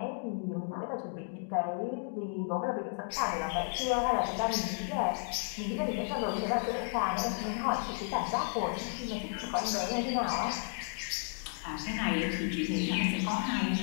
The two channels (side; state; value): right; silent; 56 dB below the other